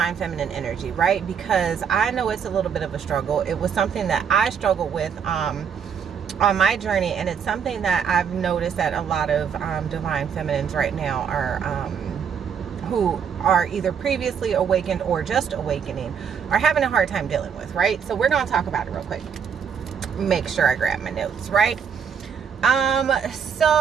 feminine energy, right? Because I know it's a little bit of a struggle. It was something that I struggled with on my journey, and it's something that I've noticed that a lot of divine feminines right now are who are either previously awakened or just awakening are having a hard time dealing with, right? So we're going to talk about it real quick. Make sure I grab my notes, right? On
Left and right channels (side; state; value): left; quieter; 7.2 dB